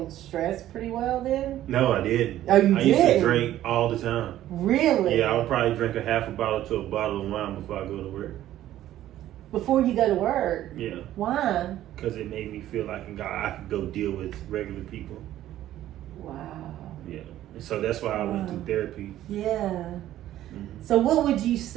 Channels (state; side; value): quieter; left; 13.2 dB